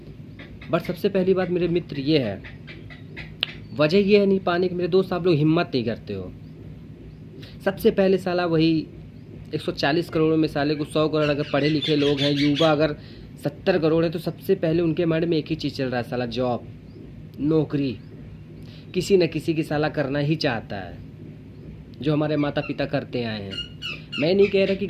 बट सबसे पहली बात मेरे मित्र ये है, वजह ये है नहीं पाने की मेरे दोस्त, आप लोग हिम्मत नहीं करते हो। सबसे पहले साला वही 140 करोड़ में साले को 100 करोड़ अगर पढ़े लिखे लोग हैं, युवा अगर 70 करोड़ है, तो सबसे पहले उनके माइंड में एक ही चीज़ चल रहा है, साला जॉब, नौकरी, किसी न किसी की साला करना ही चाहता है, जो हमारे माता पिता करते आए हैं। मैं नहीं कह रहा कि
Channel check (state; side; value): identical; both; correlation 1.00